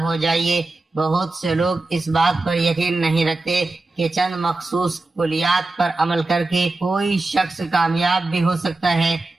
ہو جائیے۔ بہت سے لوگ اس بات پر یقین نہیں رکھتے کہ چند مخصوص کلیات پر عمل کر کے کوئی شخص کامیاب بھی ہو سکتا ہے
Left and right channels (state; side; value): quieter; left; 3.1 dB